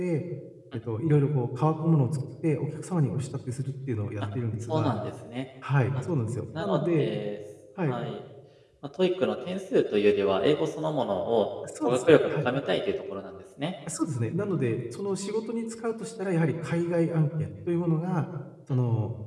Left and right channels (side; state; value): both; identical; correlation 1.00